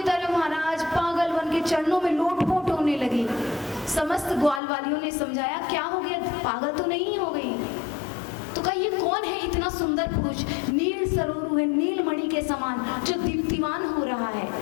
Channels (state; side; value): drops out; right; at 4.6 s